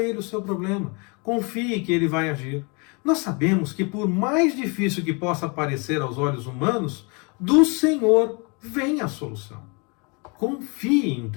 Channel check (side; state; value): right; quieter; 31.6 dB